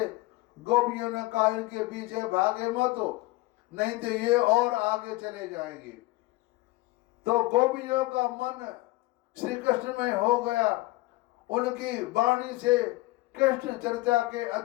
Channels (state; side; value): quieter; right; 20.3 dB